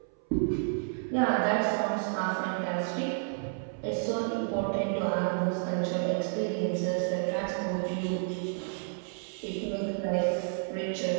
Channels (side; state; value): left; silent; 57 dB below the other